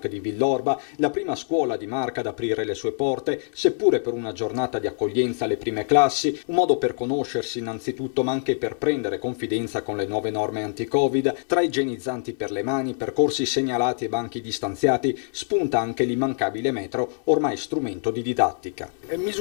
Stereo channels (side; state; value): right; silent; digital silence